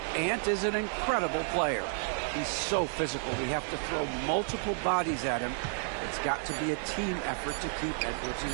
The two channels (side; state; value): left; silent; 57 dB below the other